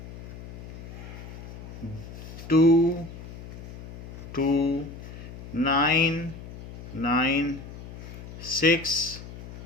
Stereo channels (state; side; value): noise; left; hum, 13 dB below the sound